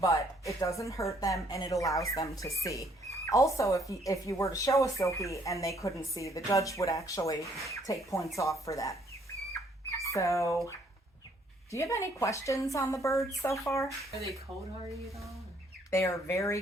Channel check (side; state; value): both; normal; correlation 0.65